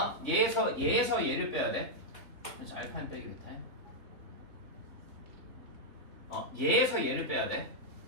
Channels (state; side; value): late; left; 3.5 ms